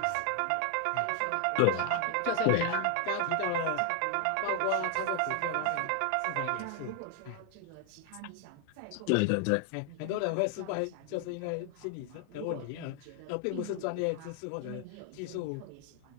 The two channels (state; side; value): different; both; correlation 0.01